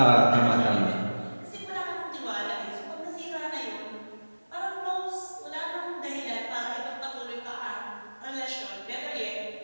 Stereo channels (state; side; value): inverted; both; correlation -1.00